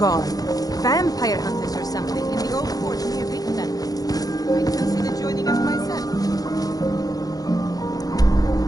Vampire hunters or something in the old fort near Riften. I'd consider joining up myself.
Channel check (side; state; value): right; late; 0.18 ms